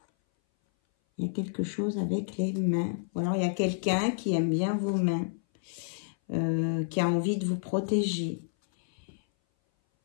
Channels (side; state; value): right; silent; 58 dB below the other